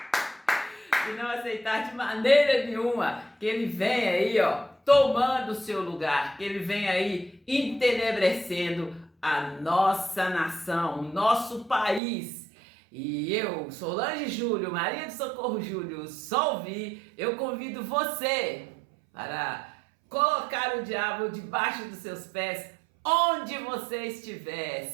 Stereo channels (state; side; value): drops out; left; at 12.0 s